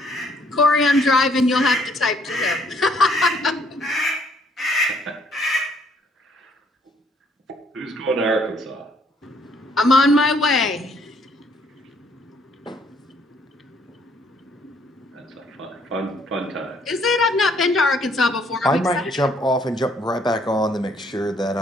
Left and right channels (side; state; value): both; normal; correlation 0.65